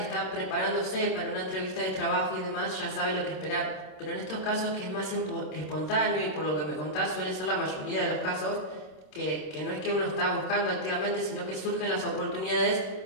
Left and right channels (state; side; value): late; right; 26 ms